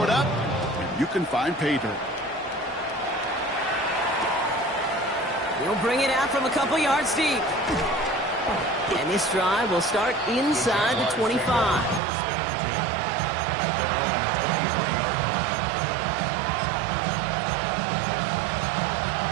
it up, and you can find pay dirt. He'll bring it out from a couple yards deep. And this drive will start inside the 25.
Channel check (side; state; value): left; drops out; at 12.0 s